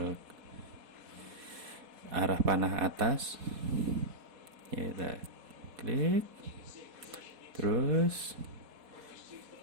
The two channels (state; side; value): late; left; 4.2 ms